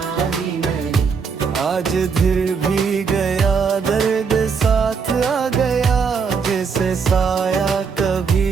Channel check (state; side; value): quieter; left; 5.7 dB